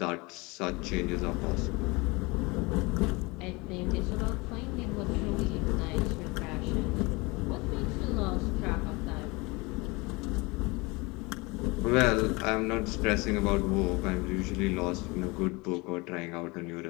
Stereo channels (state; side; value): quieter; right; 25.5 dB